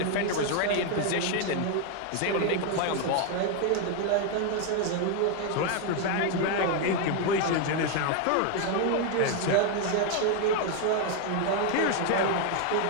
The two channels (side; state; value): both; different; correlation 0.01